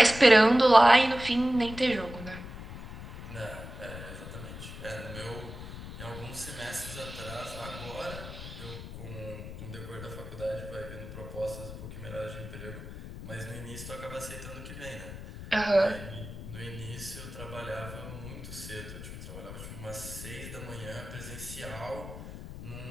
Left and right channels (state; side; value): noise; left; rumble, 11 dB below the sound